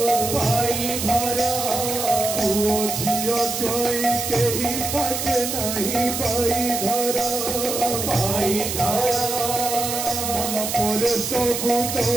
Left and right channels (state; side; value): noise; right; hiss, 3 dB below the sound